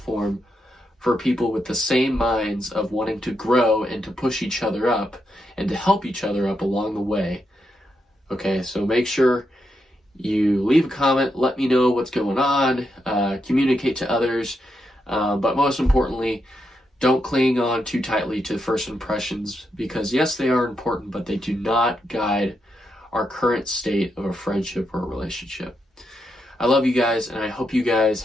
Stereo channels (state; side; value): normal; both; correlation 0.83